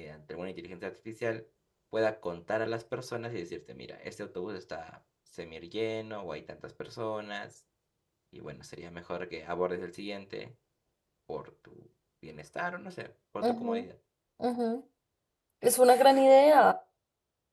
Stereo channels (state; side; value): identical; both; correlation 1.00